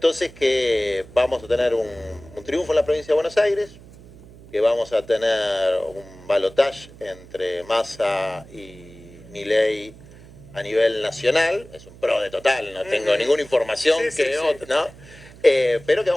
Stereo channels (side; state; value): right; noise; hum, 20 dB below the sound